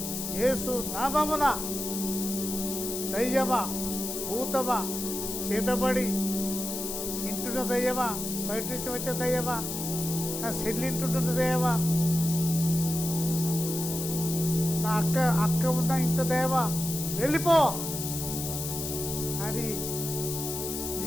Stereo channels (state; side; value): noise; left; hiss, 5 dB below the sound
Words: యేసు నామమున దయ్యమా, భూతమా, చేతబడి ఇంటున్న దయ్యమా, బయట నుంచి వచ్చే దయ్యమా, నా సెల్లింటుంటున్న దయ్యమా, నా అక్క ఉన్న ఇంట దయ్యమా, వెళ్ళిపో అని